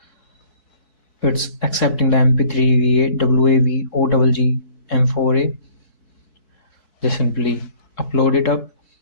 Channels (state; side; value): late; right; 4.6 ms